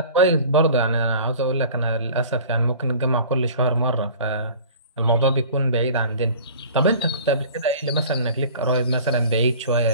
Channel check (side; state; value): both; inverted; correlation -0.43